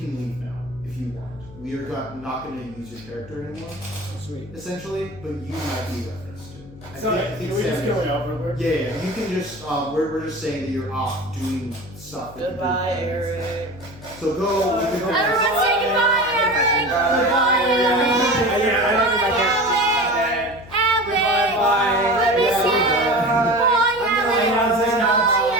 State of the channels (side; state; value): left; noise; hum, 18 dB below the sound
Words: leave now if you want. We are not going to use your character anymore, Sweet. essentially, but you might be referenced to. I So, think can we just Sam kill is. him over? We're- Yeah, you can just. We're just saying that you're off doing stuff. that you Goodbye, do. Eric. So go. You can go Everyone say goodbye, Eric! Goodbye, Eric. Yeah, I don't know my Alec! Alec! Bye. I miss Yeah, you! we're Bye, Alec! Say now.